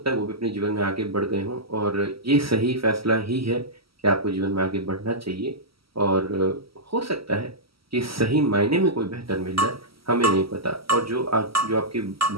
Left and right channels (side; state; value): left; late; 0.75 ms